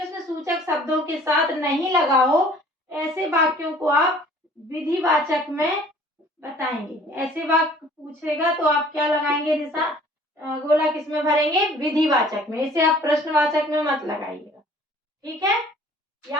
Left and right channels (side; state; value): both; normal; correlation 0.53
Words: सूचक शब्दों के साथ नहीं लगा हो, ऐसे वाक्यों को आप विधिवाचक में बताएंगे। ऐसे वाक्य पूछेगा तो आप क्या लगाएंगे निशान, गोला किसमें भरेंगे? विधिवाचक में। इसे आप प्रश्नवाचक में मत लगाइएगा, ठीक है,